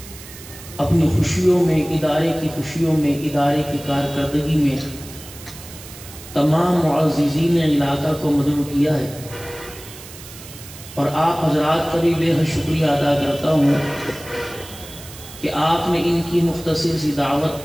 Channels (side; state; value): right; noise; hiss, 16 dB below the sound